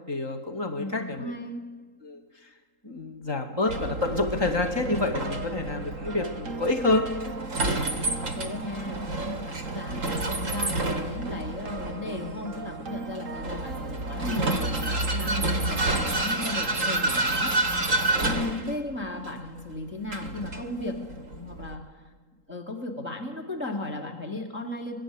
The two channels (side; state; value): left; late; 3.8 ms